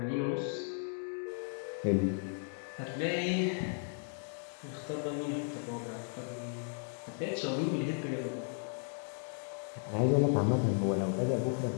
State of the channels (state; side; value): silent; right; 54 dB below the other